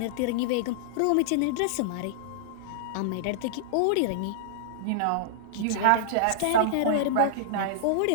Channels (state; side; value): different; both; correlation -0.02